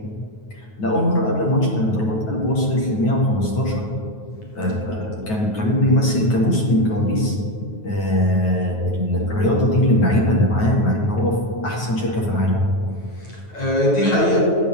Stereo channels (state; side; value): late; right; 9.3 ms